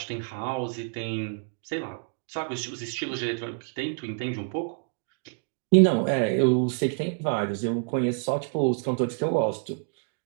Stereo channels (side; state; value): left; silent; 56 dB below the other